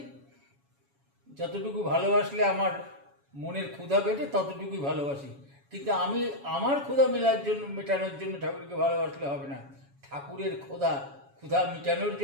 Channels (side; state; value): left; late; 7.2 ms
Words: যতটুকু ভালোবাসলে আমার মনের ক্ষুধা পেটে, ততটুকুই ভালোবাসি। কিন্তু আমি আমার ক্ষুধা মেটানোর জন্য ঠাকুরকে ভালোবাসলে হবে না। ঠাকুরের ক্ষুধা মেটানোর